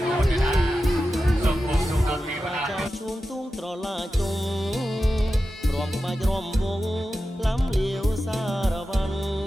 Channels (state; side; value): normal; both; correlation 0.92